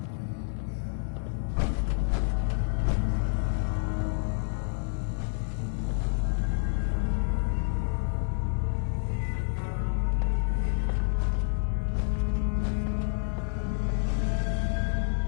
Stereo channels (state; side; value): silent; right; 59 dB below the other